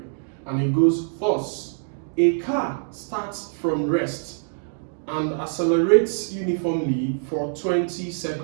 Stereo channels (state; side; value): silent; left; digital silence